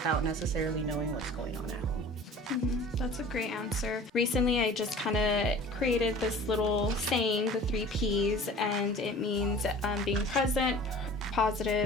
necessarily knowing what's going on at home. Mm-hmm. That's a great answer. Recently, I just kind of created this little saying, the 3 Ps, and it means being present,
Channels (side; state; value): both; normal; correlation 0.43